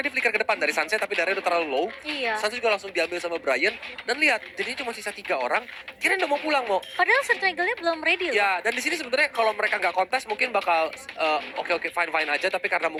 dia flicker ke depan dari Sansnya, tapi darahnya udah terlalu low. Iya. Sans juga langsung diambil sama Brian, dan lihat jadinya cuma sisa 3 orang. Kirain udah mau pulang mau. Padahal Circle-nya belum ready loh. Ya, dan di sini sebenarnya kalau mereka nggak kontes mungkin bakal oke fine aja, tapi karena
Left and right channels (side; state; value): both; identical; correlation 1.00